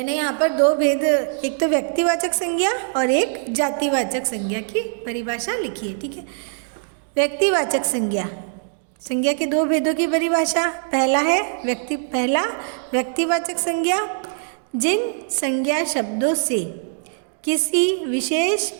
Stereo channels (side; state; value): left; silent; digital silence